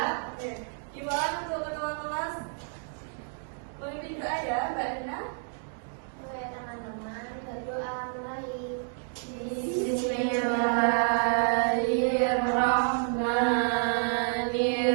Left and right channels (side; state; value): left; silent; 57 dB below the other